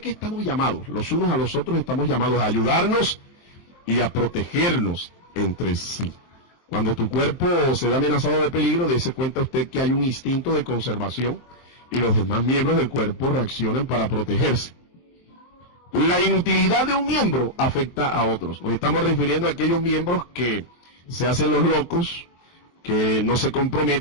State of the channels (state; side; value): late; right; 23 ms